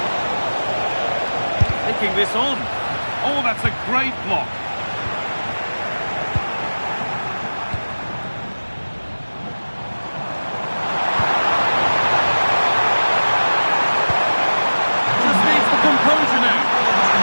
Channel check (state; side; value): inverted; both; correlation -1.00